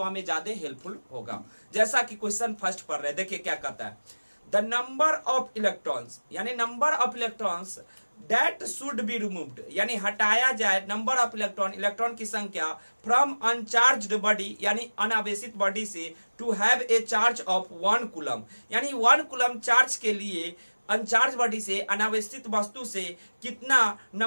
हमें ज्यादा हेल्पफुल होगा। जैसा कि क्वेश्चन फर्स्ट पढ़ रहे हैं, देखिए क्या कहता है। द नंबर ऑफ इलेक्ट्रॉन्स, यानी number of electrons that should be removed, यानी हटाया जाए, नंबर ऑफ इलेक्ट्रॉन, इलेक्ट्रॉन की संख्या फ्रॉम अनचार्ज्ड बॉडी, यानी अनावेशित बॉडी से, to have a charge of 1 coulomb, यानी 1 कूलम चार्ज के लिए अनचार्ज बॉडी से, अनावेशित वस्तु से कितना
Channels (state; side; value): inverted; both; correlation -1.00